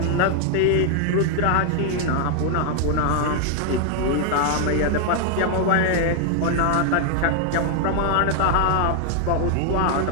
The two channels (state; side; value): different; both; correlation 0.00